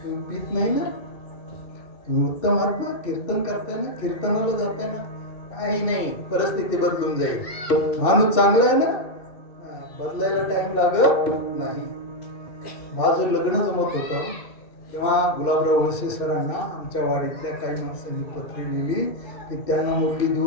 तुम्ही पीत नाही ना, तुम्ही उत्तम आहात ना, कीर्तन करताना, कीर्तनाला जाताना काही नाही, परिस्थिती बदलून जाईल. माणूस चांगला आहे ना, बदलायला टाइम लागत नाही. माझं लग्न जमत होतं तेव्हा गुलाबराव वळसे सरांना आमच्या वाडीतल्या काही माणसांनी पत्रे लिहिली की त्यांना मुलगी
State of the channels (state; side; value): late; right; 2.7 ms